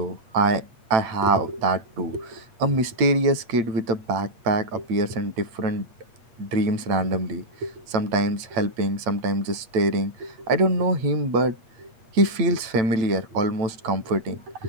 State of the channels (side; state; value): left; late; 8.4 ms